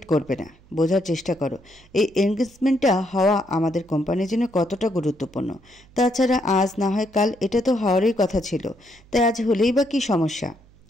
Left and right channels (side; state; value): right; noise; hum, 28 dB below the sound